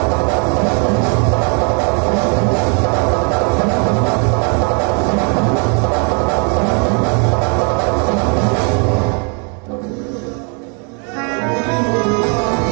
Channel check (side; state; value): left; quieter; 37.7 dB